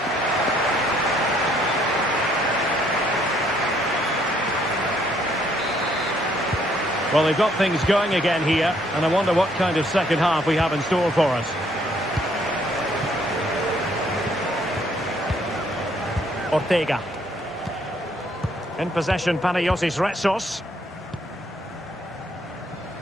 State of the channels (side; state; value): both; normal; correlation 0.67